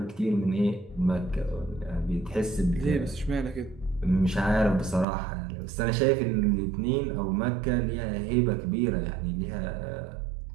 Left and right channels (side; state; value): left; drops out; at 5.1 s